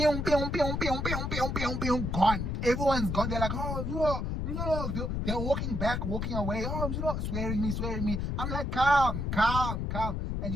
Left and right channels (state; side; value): noise; left; rumble, 2 dB below the sound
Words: pew, pew, pew, pew, pew, pew, pew, gone. Everyone's gone. They're like, oh, they're walking back, walking away. Oh, swearing me. I'm like, calm. And